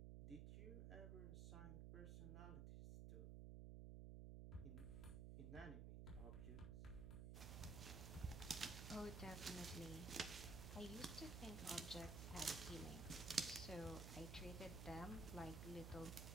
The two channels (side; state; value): right; noise; hum, 4 dB below the sound